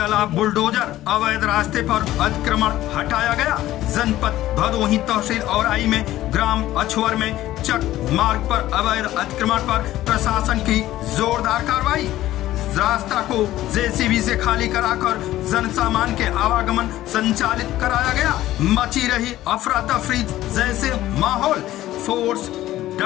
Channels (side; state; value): right; quieter; 14.7 dB